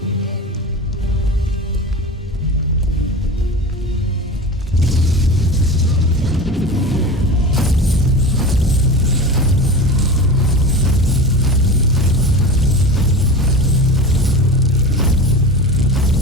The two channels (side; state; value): both; normal; correlation 0.30